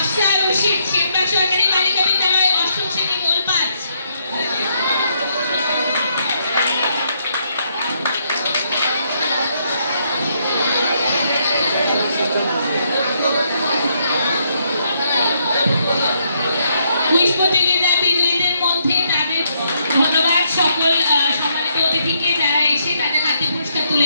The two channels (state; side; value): inverted; both; correlation -0.75